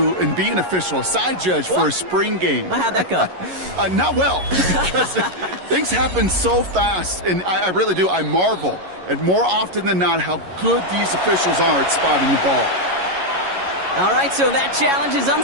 and be an official, a side judge for a spring game. How'd that go? Not well, because things happen so fast, and I really do. I marvel at more often than not how good these officials are at spotting the ball. All right, so that challenge is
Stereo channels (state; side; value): late; left; 11 ms